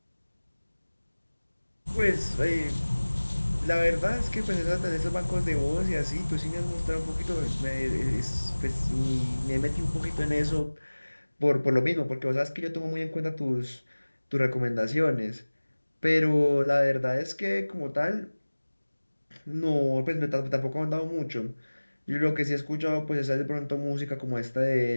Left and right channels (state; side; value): inverted; both; correlation -1.00